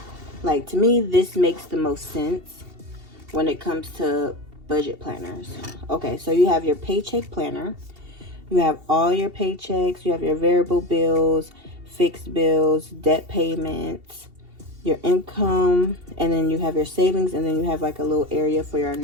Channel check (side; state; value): left; late; 2.7 ms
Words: Like, to me, this makes the most sense when it comes to budget planners. Okay, so you have your paycheck planner. You have all your paychecks. You have your variable bills, fixed bills, debt payments, your income, and then you have your savings, and then you have like a little area for your